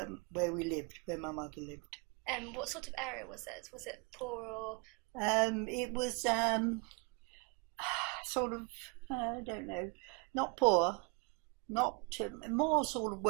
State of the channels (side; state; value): left; quieter; 30.1 dB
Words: we lived, where my mother lived. What sort of area was it? Was it poor or? It was sort of, I don't know, not poor, not more sort of